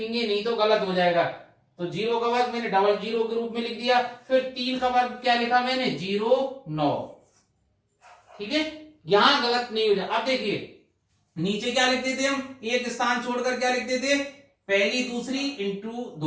नहीं तो गलत हो जाएगा। तो जीरो का वर्ग मैंने डबल जीरो के रूप में लिख दिया। फिर 3 का वर्ग क्या लिखा मैंने, 09। ठीक है, यहां गलत नहीं हो जाए। अब देखिए नीचे क्या लिखते थे हम, एक स्थान छोड़कर क्या लिखते थे, पहली दूसरी इंटू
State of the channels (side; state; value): both; identical; correlation 1.00